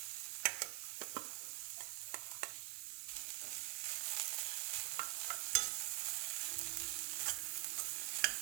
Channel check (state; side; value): quieter; left; 23.7 dB